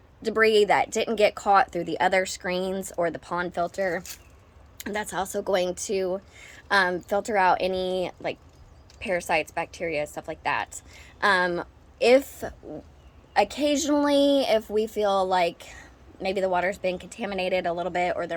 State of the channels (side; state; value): both; identical; correlation 1.00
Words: debris that didn't get caught through the other screens or the pond filter. And that's also going to filter out any like parasites, bacteria, stuff like that. If occasionally, if we feel like maybe the water's been contaminated a little bit or there